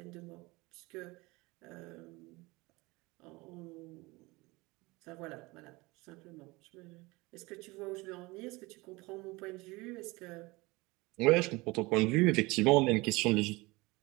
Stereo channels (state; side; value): quieter; left; 23.1 dB